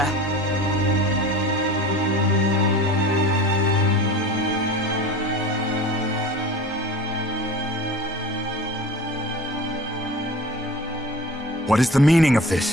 What is the meaning of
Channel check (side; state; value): both; normal; correlation 0.37